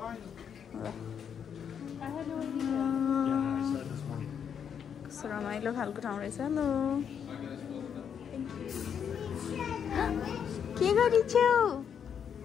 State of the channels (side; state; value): right; quieter; 7.8 dB